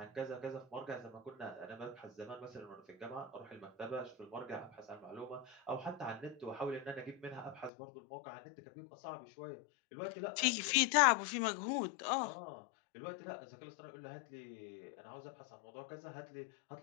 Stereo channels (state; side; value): drops out; right; at 7.7 s